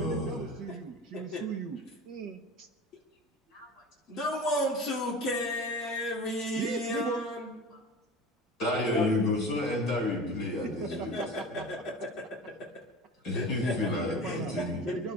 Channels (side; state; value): both; normal; correlation 0.35